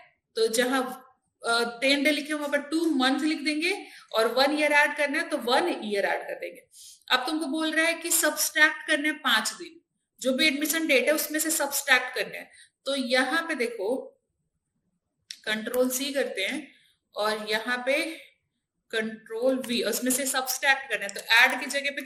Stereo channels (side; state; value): both; identical; correlation 1.00